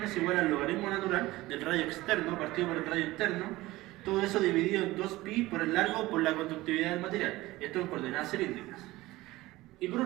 es igual al logaritmo natural del radio externo partido por el radio interno, todo eso dividido en 2pi por el largo por la conductividad del material, esto en coordenadas cilíndricas. Y por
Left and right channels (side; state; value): left; quieter; 18.6 dB